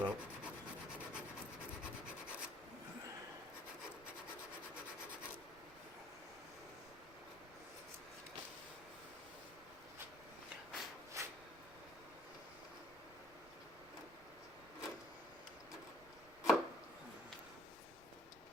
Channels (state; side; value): noise; right; rumble, 22 dB below the sound